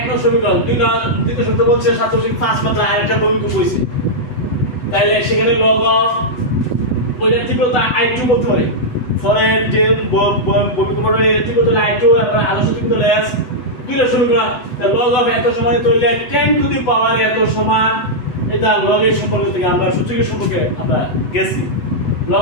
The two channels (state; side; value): late; right; 8.0 ms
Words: নং সমীকরণ, দ্বিতীয় সূত্র বলছে 7.5 মাত্রা আর একটা ভূমিকম্প হইছে, তাইলে সেখানে লগ অফ ওইটা তীব্রতা I2 বলতে পারি। পরে যে ভূমিকম্পটা তীব্রতা I2 এবং আদর্শ তীব্রতা S দুইটা সমীকরণ লগ অফ এত সমান তৈরি 10 টু দি পাওয়ার এত সমান এটা লগের সম্পর্ক থেকে আমরা সূচকের সম্পর্কে আমরা গেছি।